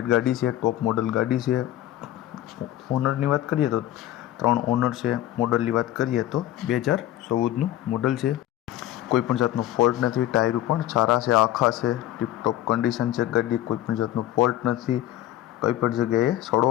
ગાડી છે, ટોપ મોડલ ગાડી છે। ઓનરની વાત કરીએ તો 3 ઓનર છે। મોડલની વાત કરીએ તો 2014નું મોડલ છે। કોઈ પણ જાતનો ફોલ્ટ નથી, ટાયરો પણ સારા છે, આખા છે, ટીપટોપ કન્ડિશન છે ગાડી, કોઈ પણ જાતનો ફોલ્ટ નથી, કોઈ પણ જગ્યાએ સડો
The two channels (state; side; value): quieter; right; 13.6 dB